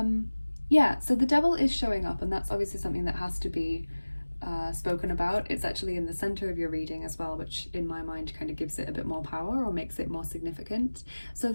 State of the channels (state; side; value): inverted; both; correlation -1.00